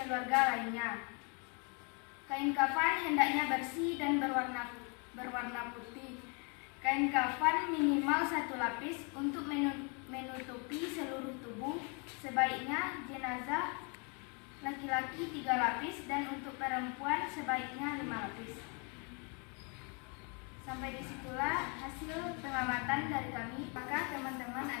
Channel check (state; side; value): quieter; right; 34.8 dB